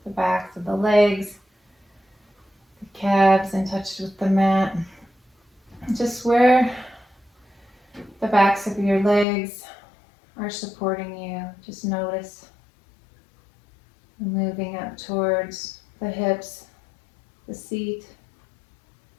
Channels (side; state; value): right; drops out; at 9.2 s